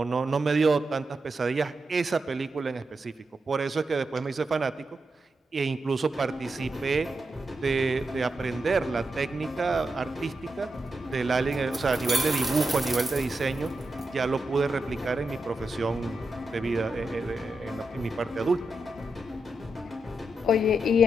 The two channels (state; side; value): normal; both; correlation 0.87